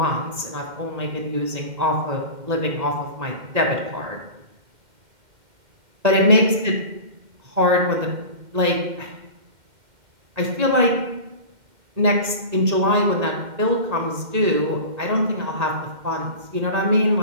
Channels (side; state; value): left; late; 2.1 ms